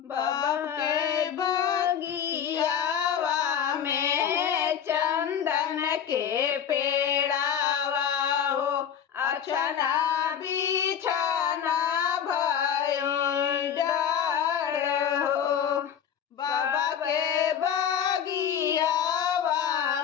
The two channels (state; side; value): quieter; right; 8.6 dB